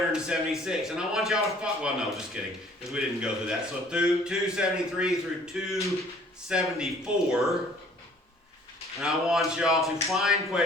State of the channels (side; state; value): both; normal; correlation 0.56